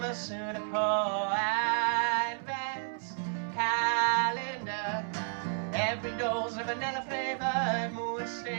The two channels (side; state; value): left; silent; 57 dB below the other